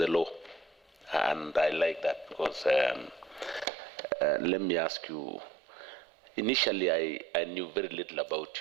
law. And I like that because let me ask you, initially I knew very little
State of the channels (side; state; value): left; drops out; at 3.7 s